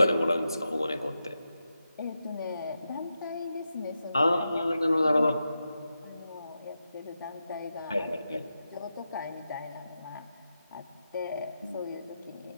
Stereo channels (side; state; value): both; inverted; correlation -0.88